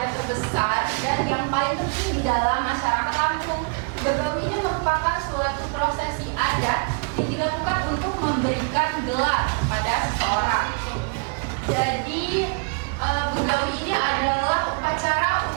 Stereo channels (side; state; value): left; quieter; 34.8 dB